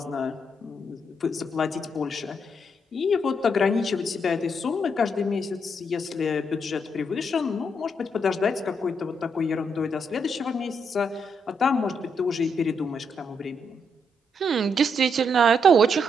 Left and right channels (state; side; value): normal; both; correlation 0.77